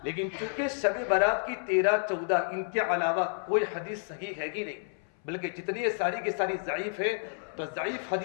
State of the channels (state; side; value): silent; right; 58 dB below the other